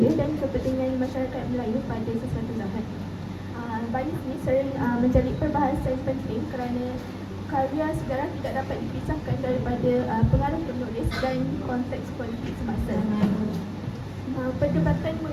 dan kepentingan masyarakat Melayu pada sesuatu zaman. Baris ini sering menjadi perbahasan penting kerana karya sejarah tidak dapat dipisahkan daripada pengaruh penulis dan konteks politik semasa. Perdebatan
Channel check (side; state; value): both; identical; correlation 1.00